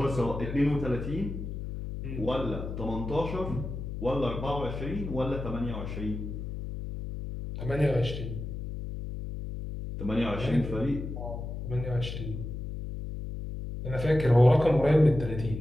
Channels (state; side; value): noise; left; hum, 6 dB below the sound